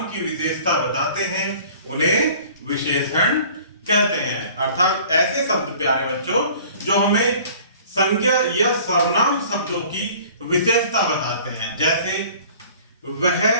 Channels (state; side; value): inverted; both; correlation -0.49